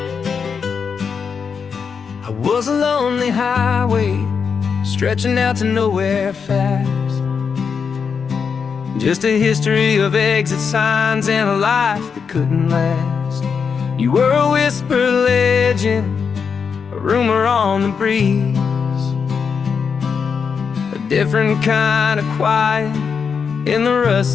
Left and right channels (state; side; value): quieter; right; 6.1 dB